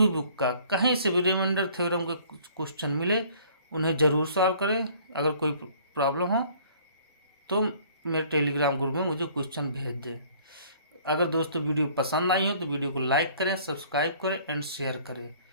बुक का कहीं से भी रिमाइंडर थ्योरम के क्वेश्चन मिले उन्हें ज़रूर सॉल्व करें। अगर कोई प्रॉब्लम हो तो मेरे टेलीग्राम ग्रुप में मुझे क्वेश्चन भेज दें। अगर दोस्तों वीडियो पसंद आई हो तो वीडियो को लाइक करें, सब्सक्राइब करें एंड शेयर करें।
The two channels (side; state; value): both; inverted; correlation -0.55